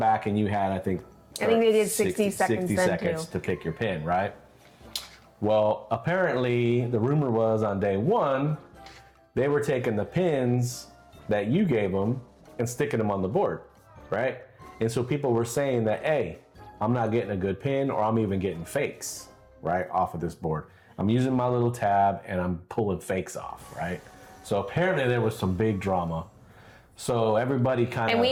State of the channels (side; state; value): both; identical; correlation 1.00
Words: and you had, I think they did 60 seconds then, seconds too. to pick your pin, right? Well, apparently the rumor was on day one, they were taking the pins that you gave them and sticking them on the board, right? And so people were saying that, hey, I'm not getting a good pin, or I'm even getting fakes, right, off of this board. I'm using my little tab and I'm pulling fakes off, right? So apparently there was some big drama. So everybody kind of... And